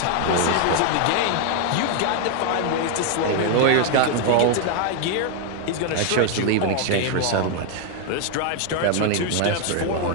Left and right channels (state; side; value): different; both; correlation 0.00